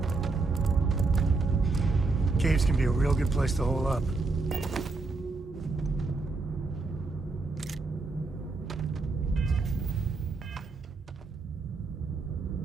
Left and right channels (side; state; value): left; quieter; 3.7 dB